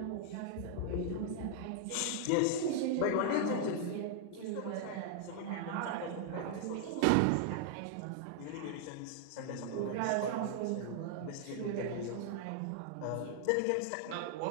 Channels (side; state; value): both; different; correlation 0.00